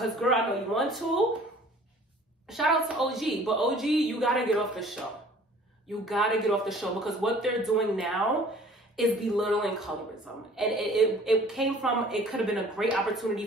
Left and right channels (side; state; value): both; normal; correlation 0.51